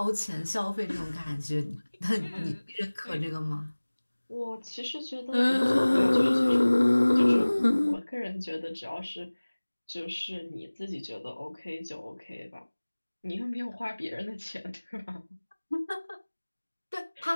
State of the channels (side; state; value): both; inverted; correlation -1.00